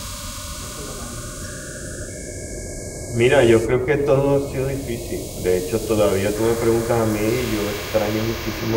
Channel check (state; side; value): identical; both; correlation 1.00